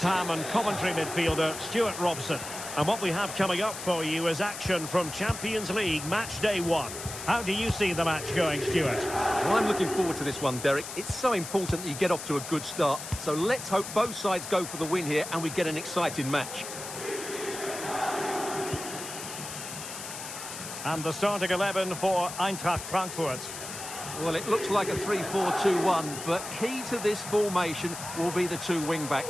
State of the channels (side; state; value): left; noise; hiss, 9 dB below the sound